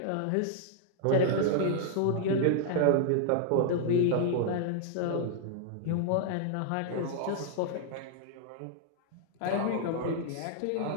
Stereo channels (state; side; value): different; both; correlation -0.01